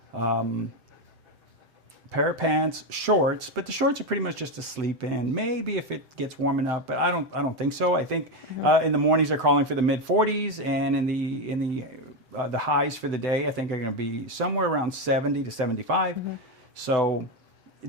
pair of pants, shorts, but the shorts are pretty much just to sleep in. Maybe if it gets warm enough, but I don't think so. I think in the mornings they're calling for the mid 40s, and in the highs for the day I think are going to be somewhere around 70 to 75. So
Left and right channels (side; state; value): left; late; 7.8 ms